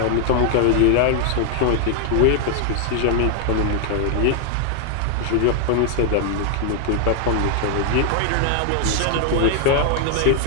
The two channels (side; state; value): both; different; correlation 0.00